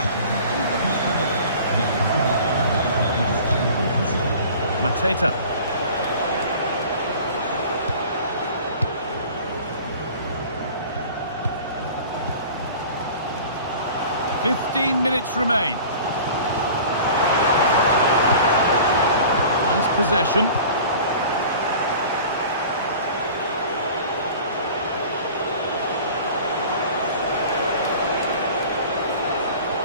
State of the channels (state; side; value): inverted; both; correlation -0.43